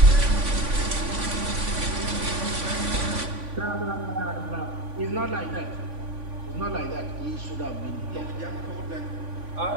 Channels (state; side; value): late; left; 3.5 ms